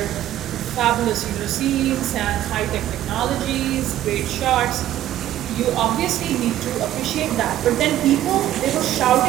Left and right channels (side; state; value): left; quieter; 13.0 dB